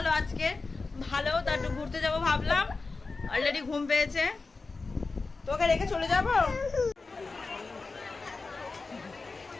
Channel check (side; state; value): right; quieter; 3.9 dB